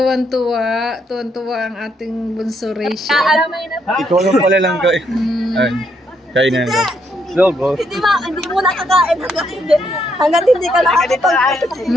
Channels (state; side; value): normal; both; correlation 0.75